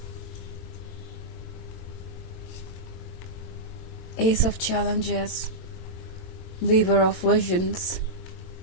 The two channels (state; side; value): late; right; 22 ms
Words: Ace of Challenges, Weaver of Visions,